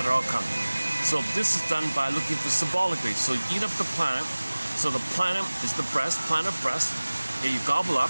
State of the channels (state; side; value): inverted; both; correlation -1.00